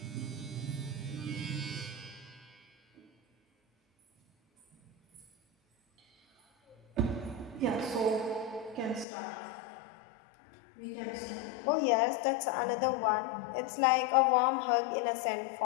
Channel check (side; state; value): right; drops out; at 9.1 s